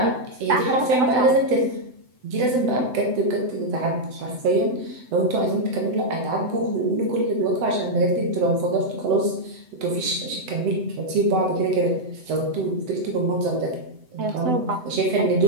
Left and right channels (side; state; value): left; late; 7.9 ms